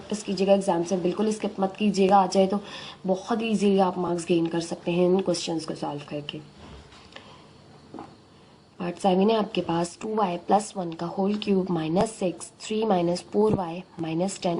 कीजिएगा, एग्जाम से बिल्कुल स्किप मत कीजिएगा। आ जाए तो बहुत ईजीली आप मार्क्स गेन कर सकते हैं इन क्वेश्चंस को सॉल्व करके। पार्ट 7 है आपके पास 2y + 1 का whole cube -6 3 - 4y - 10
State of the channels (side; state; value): both; identical; correlation 1.00